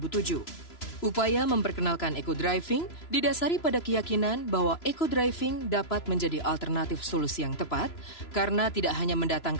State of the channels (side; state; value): right; late; 3.0 ms